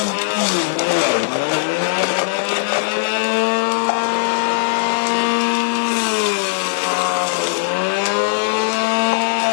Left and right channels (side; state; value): right; quieter; 39.1 dB